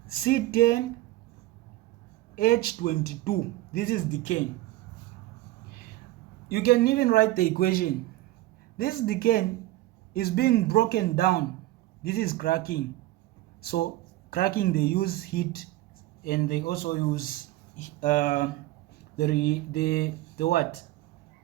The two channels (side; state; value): left; quieter; 16.7 dB